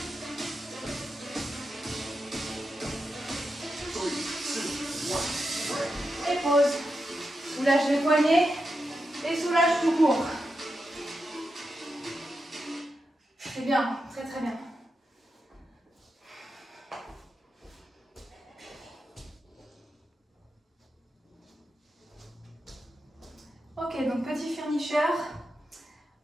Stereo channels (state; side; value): normal; both; correlation 0.88